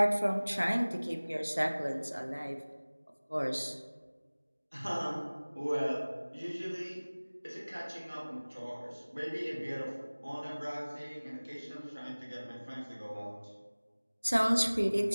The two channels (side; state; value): both; inverted; correlation -1.00